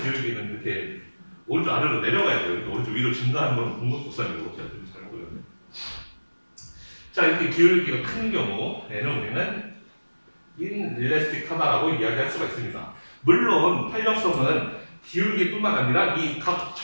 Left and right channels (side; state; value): both; inverted; correlation -1.00